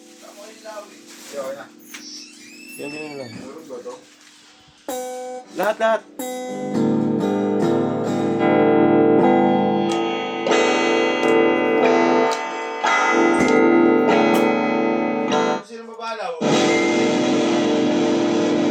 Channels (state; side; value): identical; both; correlation 1.00